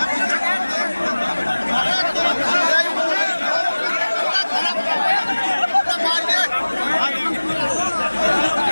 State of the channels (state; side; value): inverted; both; correlation -1.00